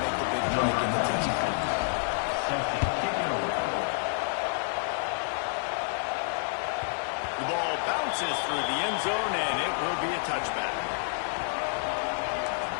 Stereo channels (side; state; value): right; silent; digital silence